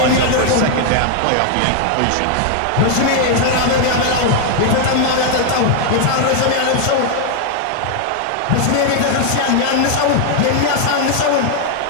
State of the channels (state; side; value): different; both; correlation 0.00